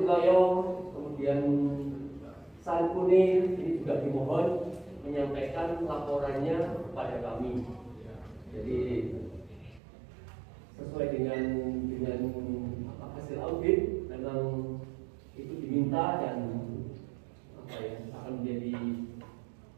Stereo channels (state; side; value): drops out; left; at 9.8 s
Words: kemudian Sari Kuning, ini juga dimohon menyampaikan laporannya kepada kami. Jadi sesuai dengan hasil audit memang itu diminta dan akan menjadi